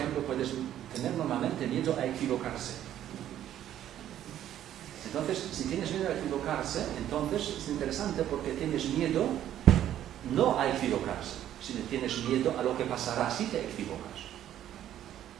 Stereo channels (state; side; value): quieter; left; 11.5 dB